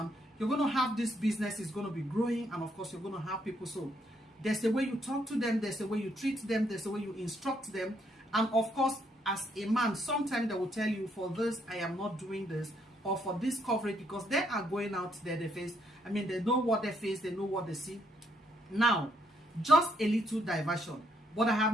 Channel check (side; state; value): both; normal; correlation 0.73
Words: You're going to have this business is going to be growing, and of course you're going to have people. So there's a way you talk to them, there's a way you treat them, there's a way you instruct them. And of course, as a man, sometimes they will tell you, for this, I am not doing this, or for this coverage, because they are going out there, they face, I mean, they know what they face, they know what they see. Now, just a little diversion, but I